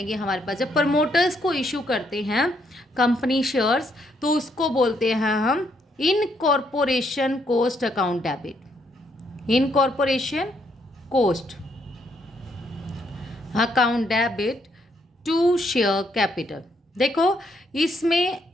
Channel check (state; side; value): normal; both; correlation 0.73